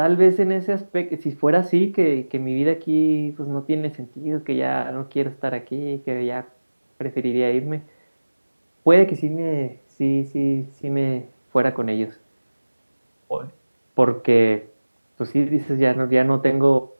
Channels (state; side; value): inverted; both; correlation -1.00